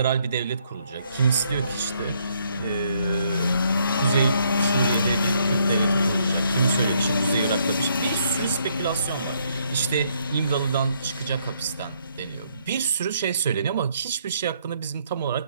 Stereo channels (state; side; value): inverted; both; correlation -0.71